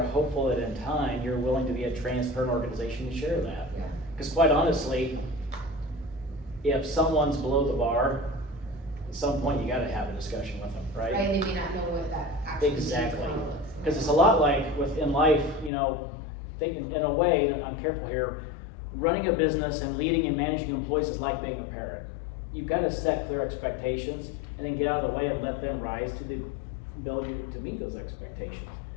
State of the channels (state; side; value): drops out; right; at 15.7 s